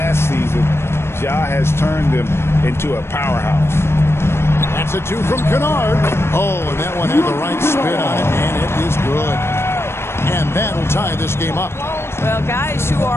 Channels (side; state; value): right; late; 0.12 ms